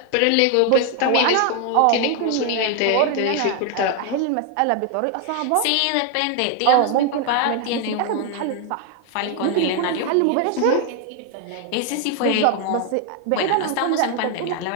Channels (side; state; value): both; different; correlation 0.01